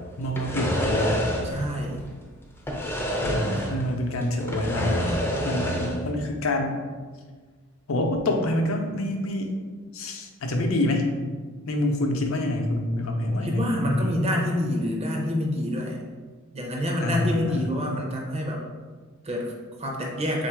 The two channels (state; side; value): normal; both; correlation 0.56